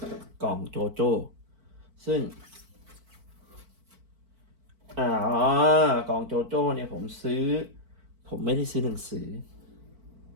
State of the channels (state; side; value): late; left; 4.5 ms